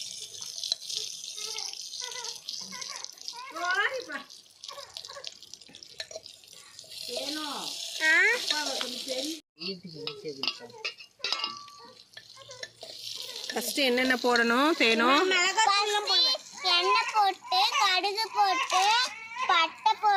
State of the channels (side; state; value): both; identical; correlation 1.00